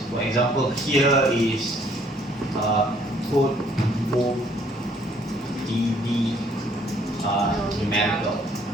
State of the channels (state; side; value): normal; both; correlation 0.63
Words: For example, here is code book ed numerical.